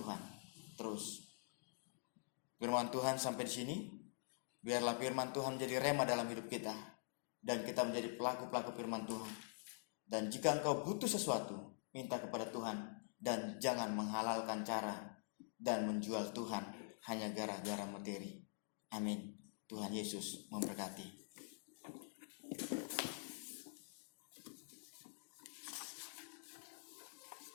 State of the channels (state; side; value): silent; right; digital silence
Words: terus. Firman Tuhan sampai di sini. Biarlah firman Tuhan menjadi rema dalam hidup kita dan kita menjadi pelaku-pelaku firman Tuhan. Dan jika engkau butuh sesuatu, minta kepada Tuhan dan jangan menghalalkan cara dan menjual Tuhan hanya gara-gara materi. Amin. Tuhan Yesus memberkati.